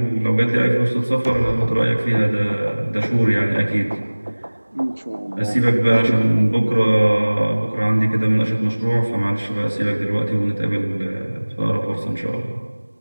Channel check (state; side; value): inverted; both; correlation -1.00